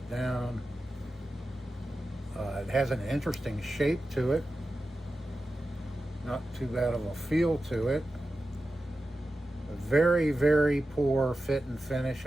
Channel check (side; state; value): both; normal; correlation 0.93